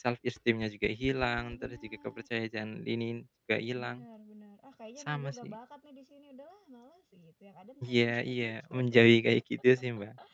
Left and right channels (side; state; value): both; identical; correlation 1.00